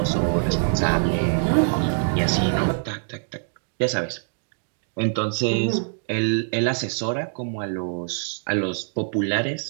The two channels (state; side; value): silent; left; digital silence